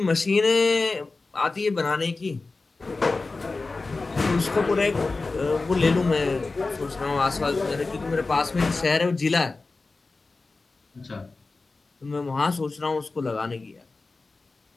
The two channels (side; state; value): right; quieter; 3.7 dB